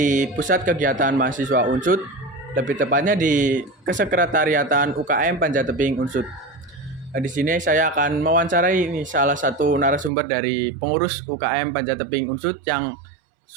pusat kegiatan mahasiswa Unsud, lebih tepatnya di Kesekretariatan UKM Panjatebing Unsud. Di sini saya akan mewawancarai salah satu narasumber dari pengurus UKM Panjatebing Unsud yang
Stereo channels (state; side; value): drops out; left; at 10.1 s